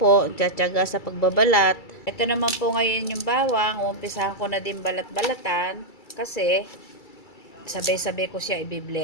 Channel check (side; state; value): right; late; 2.3 ms